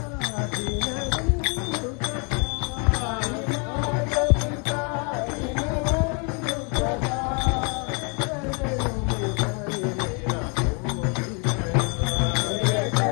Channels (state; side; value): quieter; right; 36.5 dB